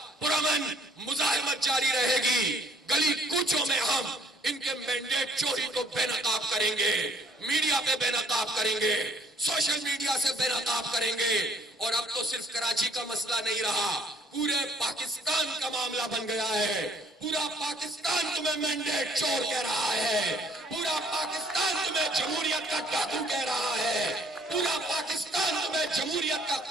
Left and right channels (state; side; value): normal; both; correlation 0.60